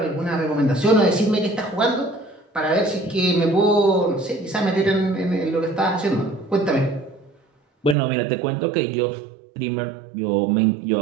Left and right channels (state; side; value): drops out; left; at 8.0 s